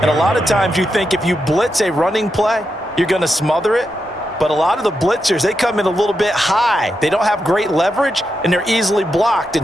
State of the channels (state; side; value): normal; both; correlation 0.86